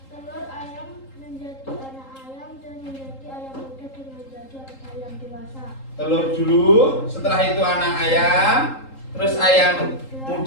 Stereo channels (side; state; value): right; late; 3.8 ms